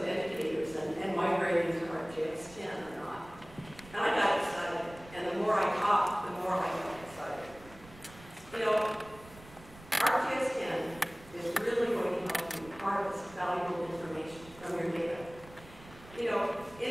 educators and migrating to ArcGIS10 or not. And I got excited, and the more I talked, the more I got excited. You know, ArcGIS10 is really going to help you harvest valuable information from your data. You know,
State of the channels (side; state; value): right; noise; rumble, 20 dB below the sound